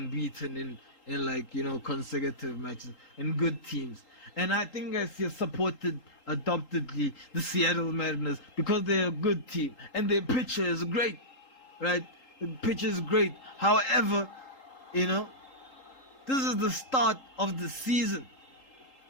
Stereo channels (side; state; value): right; late; 3.8 ms